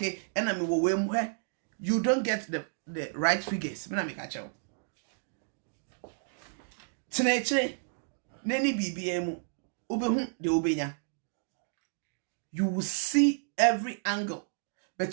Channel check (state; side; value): silent; left; digital silence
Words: and I mean where you don't get the right figures. Me na me catch you. Teneche, neni BBM, ubehu de ubenya. You will see every angle,